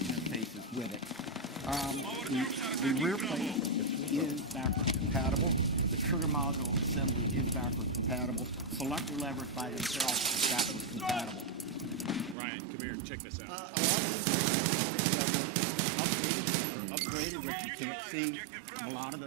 with it. The rear plate is backward compatible. The trigger module assembly is backward compatible. Selector levers by themselves are backward compatible. Ryan, come here, check this out. A lot of these components that were upgraded that you can't see, a lot of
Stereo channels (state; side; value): drops out; left; at 12.4 s